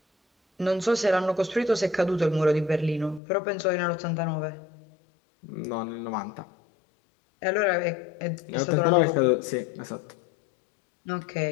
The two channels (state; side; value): drops out; right; at 3.2 s